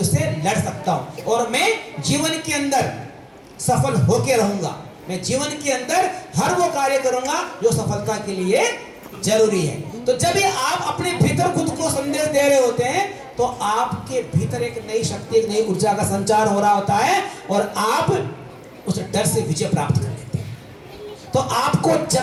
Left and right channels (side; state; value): both; identical; correlation 1.00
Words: से लड़ सकता हूं और मैं जीवन के अंदर सफल होके रहूंगा। मैं जीवन के अंदर हर वो कार्य करूंगा जो सफलता के लिए जरूरी है। तो जब भी आप अपने भीतर खुद को संदेश दे रहे होते हैं तो आपके भीतर एक नई शक्ति, एक नई ऊर्जा का संचार हो रहा होता है और आप उस डर से विजय प्राप्त कर लेते हैं। तो आपको